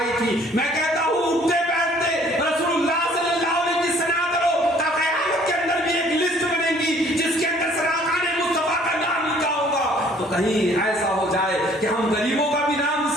تھی. میں کہتا ہوں اٹھتے بیٹھتے رسول اللہ صلی اللہ علیہ وسلم کی ثنا کرو، تا قیامت کے اندر بھی ایک لسٹ بنے گی جس کے اندر سراغان مصطفیٰ کا نام لکھا ہوگا. تو کہیں ایسا ہو جائے کہ ہم غریبوں کا بھی نام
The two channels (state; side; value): normal; both; correlation 0.57